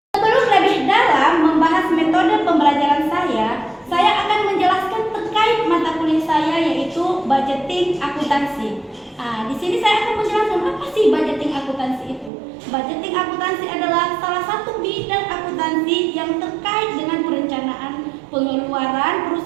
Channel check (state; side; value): drops out; left; at 12.3 s